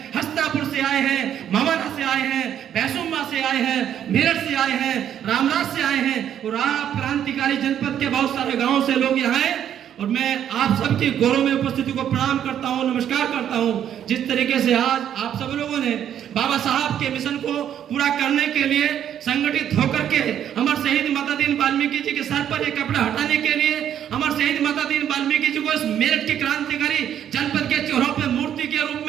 हस्तापुर से आए हैं, मवाना से आए हैं, भैंसुम्मा से आए हैं, मेरठ से आए हैं, रामराज से आए हैं और आप क्रांतिकारी जनपद के बहुत सारे गांवों से लोग यहाँ आए। और मैं आप सबकी गौरव में उपस्थिति को प्रणाम करता हूं, नमस्कार करता हूं। जिस तरीके से आज आप सब लोगों ने बाबा साहब के मिशन को पूरा करने के लिए संगठित होकर के अमर शहीद माता दीन वाल्मीकि जी के सर पर एक कपड़ा हटाने के लिए अमर शहीद माता दीन वाल्मीकि जी को इस मेरठ के क्रांतिकारी जनपद के चौरों पर मूर्ति के रूप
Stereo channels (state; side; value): quieter; left; 9.9 dB